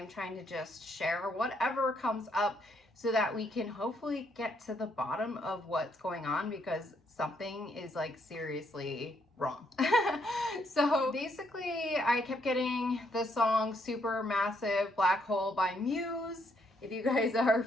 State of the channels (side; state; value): both; normal; correlation 0.73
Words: trying to just share whatever comes up so that we can hopefully get to the bottom of what's going on, because something is like seriously wrong. So basically I kept getting the song Supermassive Black Hole by Muse, if you guys are